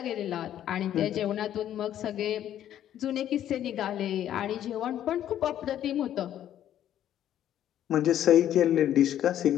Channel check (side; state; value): right; quieter; 11.2 dB